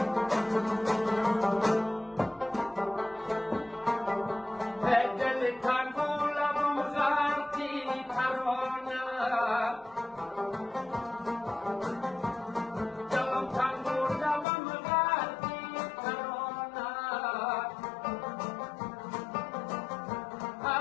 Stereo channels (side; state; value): right; drops out; at 14.5 s